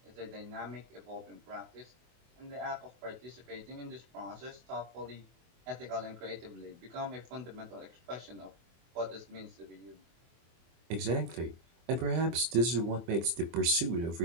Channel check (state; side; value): late; left; 24 ms